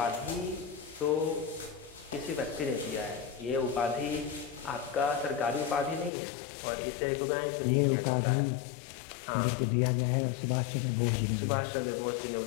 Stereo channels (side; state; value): right; drops out; at 6.1 s